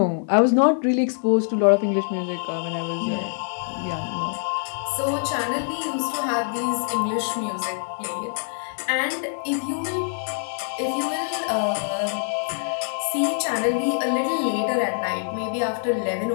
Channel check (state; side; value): silent; right; digital silence